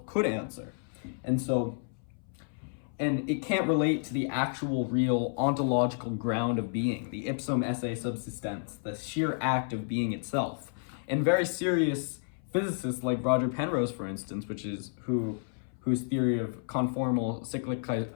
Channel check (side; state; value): right; silent; 57 dB below the other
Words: could answer. And it can't relate to the actual, real, ontological ground of being, the ipsum esse subsistens, the sheer act of being itself. And very serious physicists like Roger Penrose, for instance, whose theory of conformal cyclic